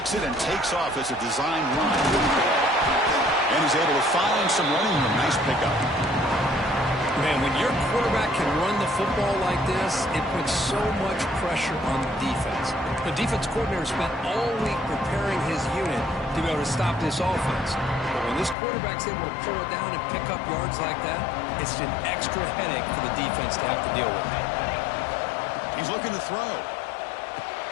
it and takes off as a design run. And he's able to find some running room. Nice pickup. Man, when your quarterback can run the football like this, it puts so much pressure on the defense. The defense coordinator spent all week preparing his unit to be able to stop this offense. But when this quarterback's able to pull it down and pick up yards like that, it's an extra headache for the defense to have to deal with. He's looking to throw.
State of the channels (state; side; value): drops out; right; at 18.6 s